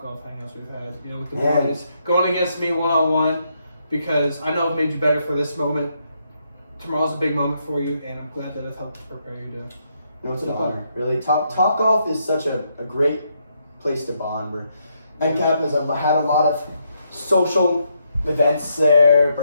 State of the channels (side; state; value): both; inverted; correlation -0.77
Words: Golf hangouts we've had, with the Yeah. boys going against me one-on-one, because I know I've made you better for this moment. Tomorrow's a big moment for you, and I'm glad that it's helped prepare you to. It's an honor, really. Top Golf is such a great place to bond. Where NCAP has had a lot of social events there,